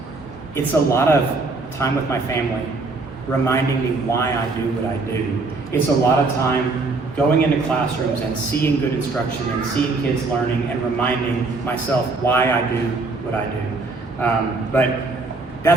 It's a lot of time with my family, reminding me why I do what I do. It's a lot of time going into classrooms and seeing good instruction and seeing kids learning and reminding myself why I do what I do. But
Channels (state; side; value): quieter; left; 3.6 dB